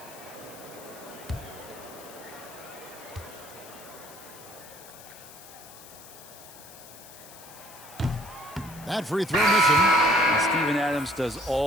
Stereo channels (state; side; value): noise; left; hiss, 18 dB below the sound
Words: That free throw missing. And Steven Adams does